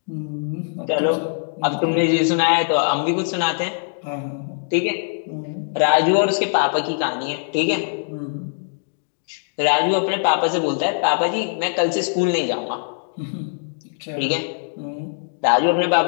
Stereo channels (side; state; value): right; silent; digital silence